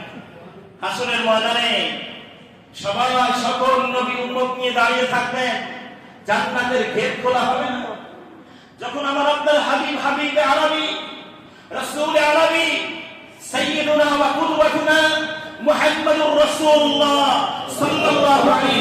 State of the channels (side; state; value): both; identical; correlation 1.00